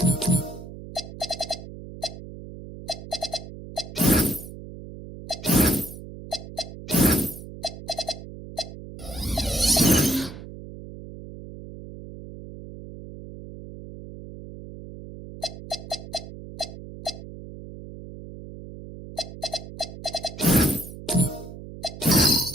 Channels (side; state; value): right; noise; hum, 13 dB below the sound